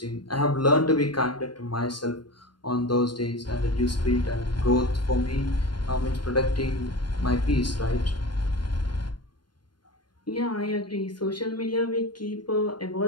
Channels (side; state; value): right; late; 0.71 ms